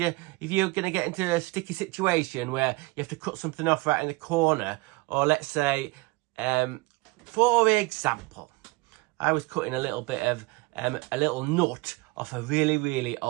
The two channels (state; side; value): quieter; left; 24.6 dB